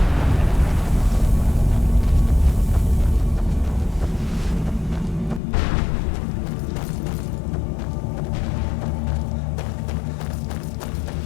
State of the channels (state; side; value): drops out; right; at 5.4 s